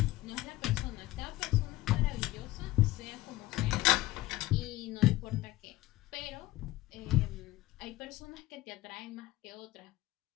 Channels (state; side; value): quieter; right; 17.6 dB